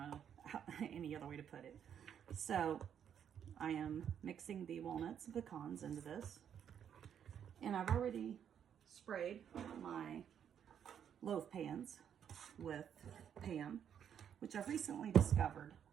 any other way to put it. So I am mixing the walnuts and pecans into this, and I've already sprayed my loaf pans with Pam, which I've recently discovered.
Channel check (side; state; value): left; quieter; 8.7 dB